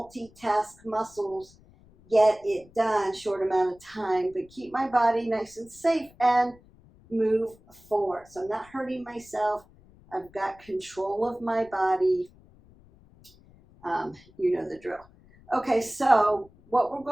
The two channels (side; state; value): left; noise; rumble, 27 dB below the sound